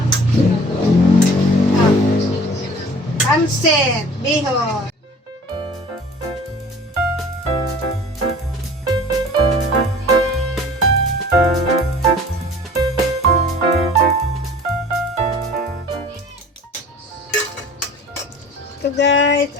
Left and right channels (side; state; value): both; normal; correlation 0.46